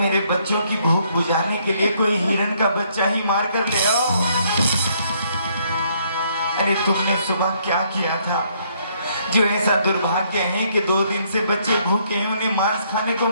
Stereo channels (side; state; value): both; inverted; correlation -0.68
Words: बच्चों की भूख बुझाने के लिए कोई हिरन का बच्चा ही मार कर ले आओ। अरे तुमने सुबह क्या किया था जो ऐसा दुर्भाग्य है कि 2 दिन से बच्चे भूखे हैं, उन्हें मांस खाने को